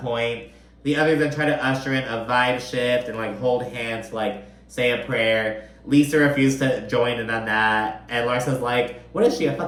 point. The others then try to usher in a vibe shift and like hold hands to like say a prayer. Lisa refused to join in on that. And Larsa's like, what is she, a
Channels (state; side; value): identical; both; correlation 1.00